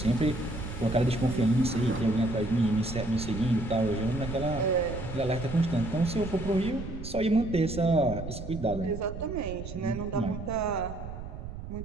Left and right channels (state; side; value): noise; right; rumble, 9 dB below the sound